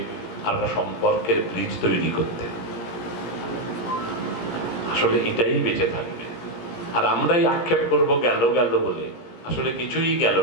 একটা সম্পর্কের ব্রিজ তৈরি করতে। আসলে এটাই বেঁচে থাকবে। আর আমরাই আক্ষেপ করব গেল গেল বলে, আসলে কিছুই গেল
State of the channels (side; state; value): right; late; 17 ms